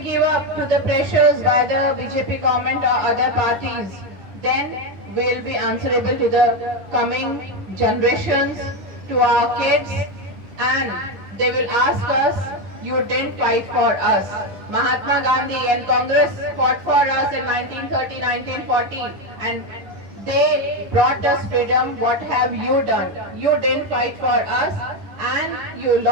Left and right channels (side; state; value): left; late; 10 ms